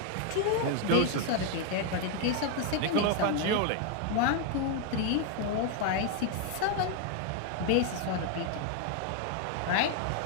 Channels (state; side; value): different; both; correlation 0.01